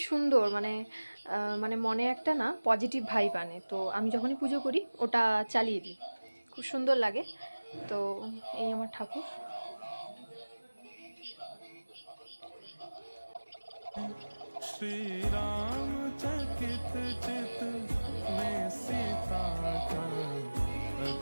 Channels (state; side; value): inverted; both; correlation -1.00